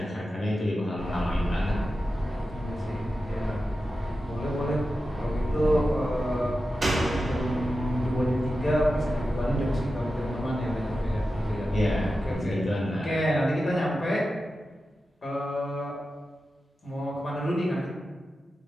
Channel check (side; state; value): both; normal; correlation 0.92